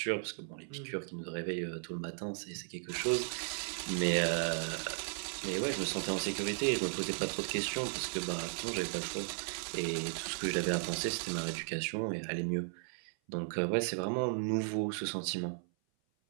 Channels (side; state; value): left; silent; 54 dB below the other